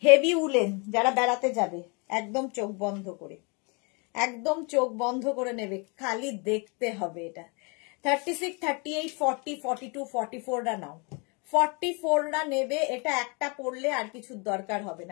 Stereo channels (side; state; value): right; quieter; 32.3 dB